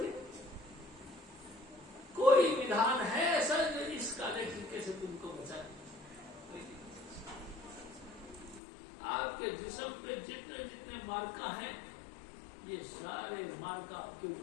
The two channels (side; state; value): right; drops out; at 8.6 s